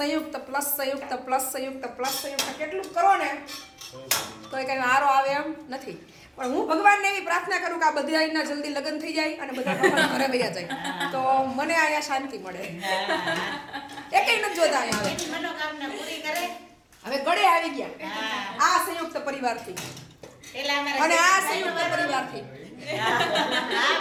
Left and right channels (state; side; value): identical; both; correlation 1.00